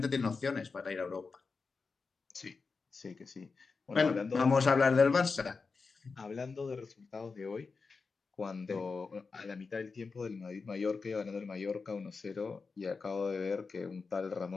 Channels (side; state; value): right; quieter; 4.6 dB